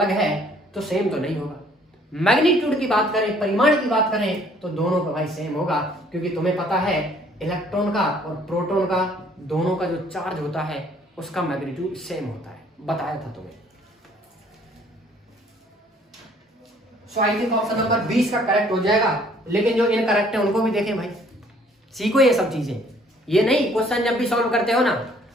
है तो सेम तो नहीं होगा। मैग्नीट्यूड की बात करें, परिमाण की बात करें तो दोनों का भाई सेम होगा, क्योंकि तुम्हें पता है इलेक्ट्रॉन का और प्रोटॉन का दोनों का जो चार्ज होता है उसका मैग्नीट्यूड सेम होता है, बताया था तुम्हें। सो आई थिंक ऑप्शन नंबर 20 का करेक्ट हो जाएगा, लेकिन जो इनकरेक्ट है उनको भी देखें भाई, सीखो ये सब चीजें। ये नहीं क्वेश्चन जब भी सॉल्व करते हो ना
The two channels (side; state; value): both; normal; correlation 0.60